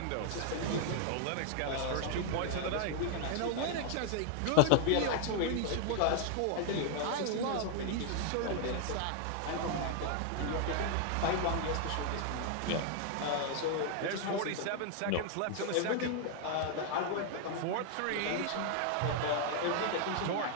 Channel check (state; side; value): different; both; correlation 0.00